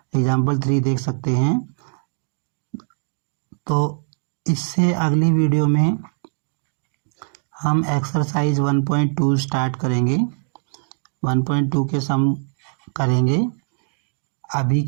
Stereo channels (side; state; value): left; silent; digital silence